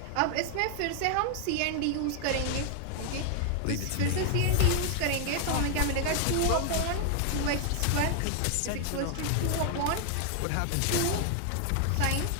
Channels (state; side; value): different; both; correlation 0.00